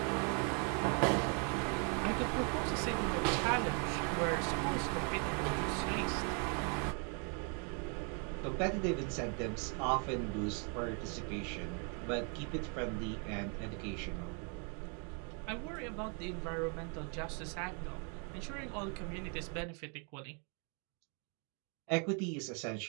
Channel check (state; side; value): quieter; left; 38.2 dB